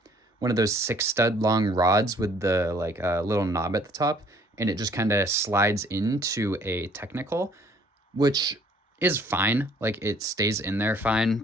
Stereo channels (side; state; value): both; normal; correlation 0.59